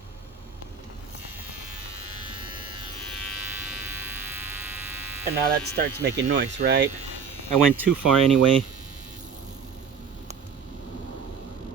And now that starts making noise, right? I went too far anyway.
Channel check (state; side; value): quieter; left; 6.3 dB